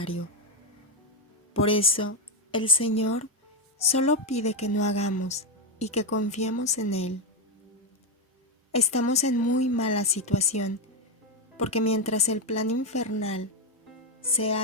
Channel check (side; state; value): both; normal; correlation 0.07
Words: Por eso, el Señor solo pide que no hagamos y que confiemos en Él. Estamos en muy mala situación, porque mientras el plan infernal se